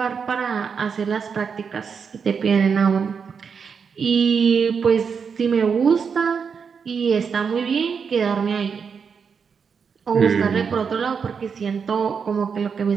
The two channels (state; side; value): quieter; left; 6.2 dB